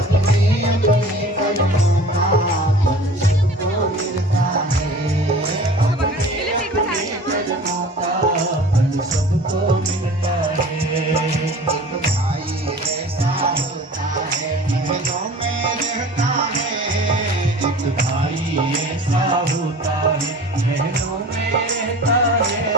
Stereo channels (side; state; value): both; normal; correlation 0.42